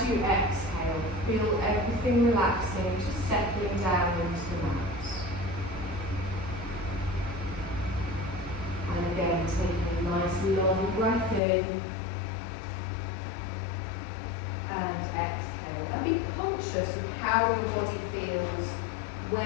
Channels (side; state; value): right; drops out; at 11.4 s